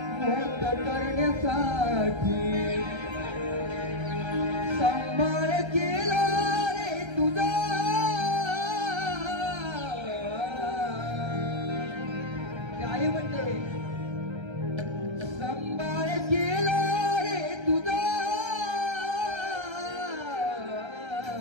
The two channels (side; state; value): left; late; 1.3 ms